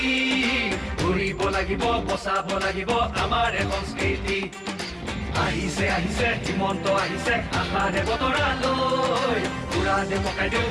ঘূৰিব লাগিব বচাব লাগিব আমাৰ সংস্কৃতি আহিছে আহিছে হিমন্ত আহিছে আশাৰে বতৰালৈ উৰা দে পকাই দিওঁ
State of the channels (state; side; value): identical; both; correlation 1.00